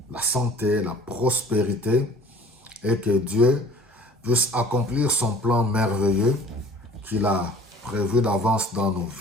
la santé, la prospérité et que Dieu puisse accomplir son plan merveilleux qu'il a prévu d'avance dans nos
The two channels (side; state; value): both; normal; correlation 0.48